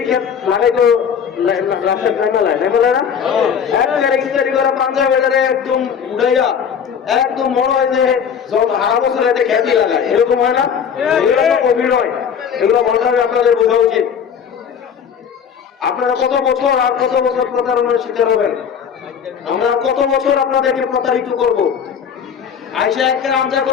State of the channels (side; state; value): right; quieter; 7.4 dB